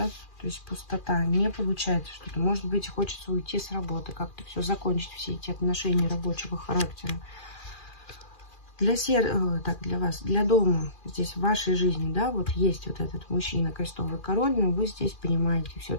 То есть пустота, не получается что-то. Может быть, хочется уйти с работы, как-то все закончить, все эти отношения рабочего характера. Для вас, для дома, здесь в вашей жизни, да, вот есть вот этот мужчина, крестовый король, но вы здесь понимаете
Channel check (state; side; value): late; right; 2.4 ms